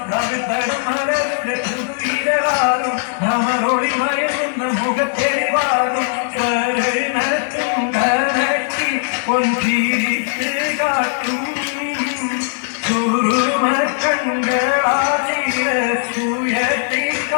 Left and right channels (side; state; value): right; silent; digital silence